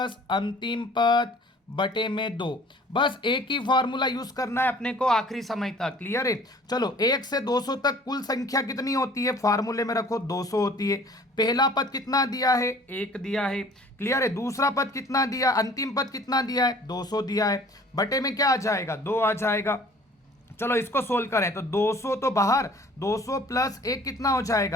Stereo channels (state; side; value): normal; both; correlation 0.51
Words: अंतिम पद बटे में 2। बस एक ही फार्मूला यूज करना है अपने को आखिरी समय तक। क्लियर है? चलो 1 से 200 तक कुल संख्या कितनी होती है, फार्मूले में रखो 200 होती है। पहला पद कितना दिया है, 1 दिया है। क्लियर है? दूसरा पद कितना दिया, अंतिम पद कितना दिया है, 200 दिया है। बटे में क्या आ जाएगा, 2 आ जाएगा। चलो इसको सोल्व करें तो 200 तो बाहर, 200 प्लस 1 कितना हो